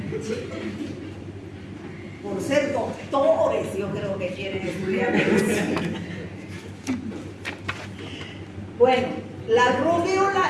Por ser doctores, yo creo que quieren estudiar medicina. Bueno, la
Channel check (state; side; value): identical; both; correlation 1.00